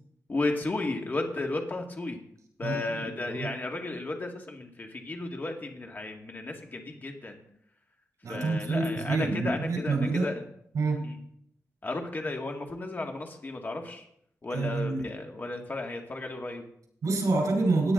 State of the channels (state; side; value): normal; both; correlation 0.84